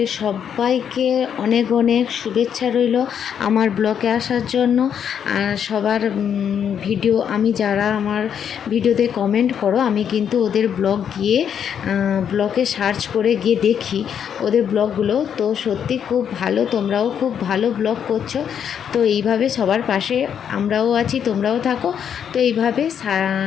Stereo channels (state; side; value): quieter; right; 8.3 dB